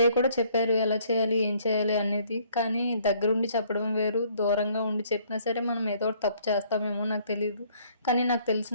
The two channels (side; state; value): both; inverted; correlation -0.62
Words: కూడా చెప్పారు ఎలా చేయాలి, ఏం చేయాలి అనేది. కానీ దగ్గరుండి చెప్పడం వేరు, దూరంగా ఉండి చెప్పినా సరే మనం ఏదో ఒకటి తప్పు చేస్తామేమో నాకు తెలీదు. కానీ నాకు